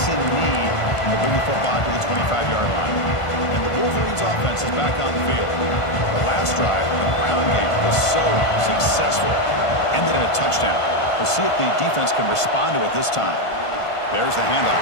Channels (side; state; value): right; late; 1.5 ms